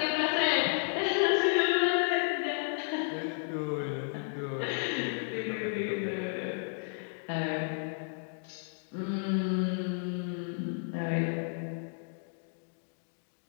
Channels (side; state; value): right; silent; digital silence